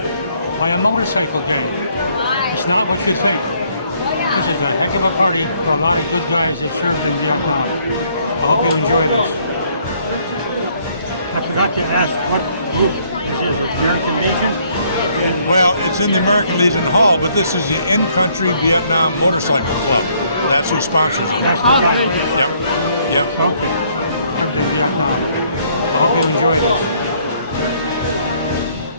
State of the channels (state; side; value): inverted; both; correlation -0.66